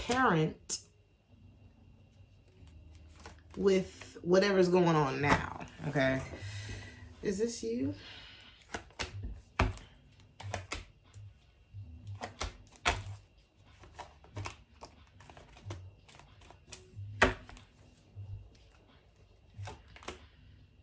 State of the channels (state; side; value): identical; both; correlation 1.00